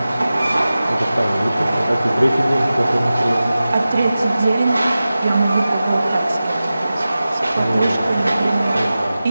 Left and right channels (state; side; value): inverted; both; correlation -0.95